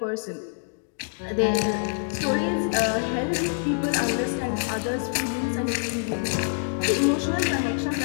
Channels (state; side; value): silent; right; digital silence